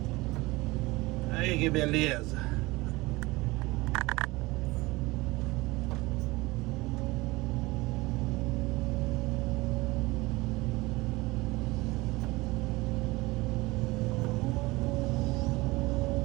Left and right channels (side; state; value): left; quieter; 21.6 dB